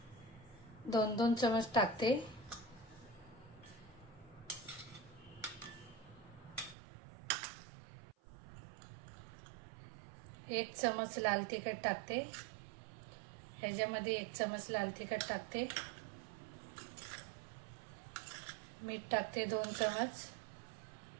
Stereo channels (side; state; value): left; drops out; at 6.8 s